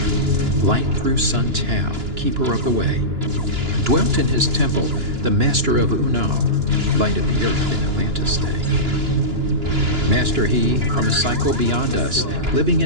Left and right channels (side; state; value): left; late; 2.9 ms